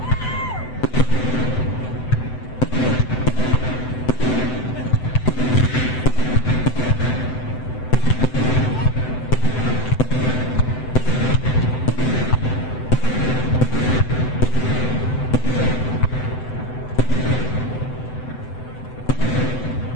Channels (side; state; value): right; late; 7.9 ms